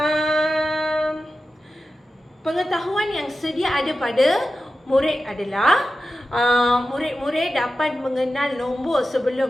Pengetahuan yang sedia ada pada murid adalah murid-murid dapat mengenal nombor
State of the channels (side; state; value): both; normal; correlation 0.93